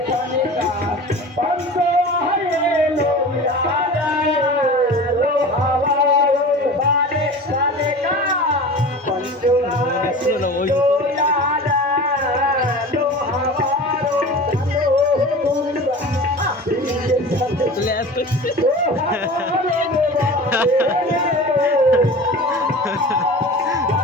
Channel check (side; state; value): both; normal; correlation 0.35